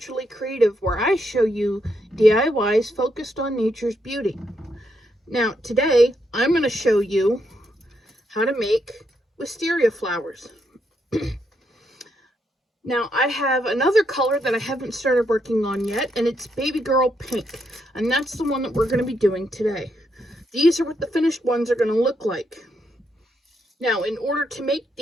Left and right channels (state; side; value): normal; both; correlation 0.78